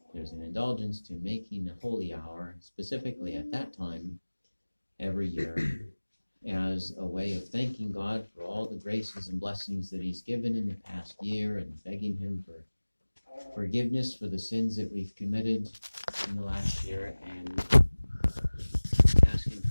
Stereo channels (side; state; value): both; inverted; correlation -1.00